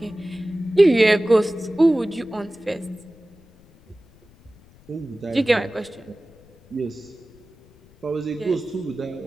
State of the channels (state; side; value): noise; left; rumble, 27 dB below the sound